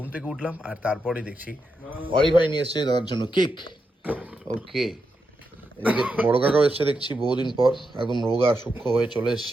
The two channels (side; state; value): both; normal; correlation 0.85